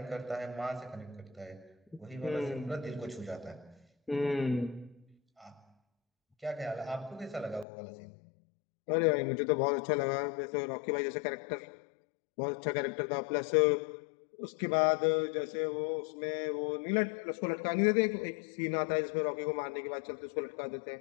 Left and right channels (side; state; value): right; drops out; at 7.7 s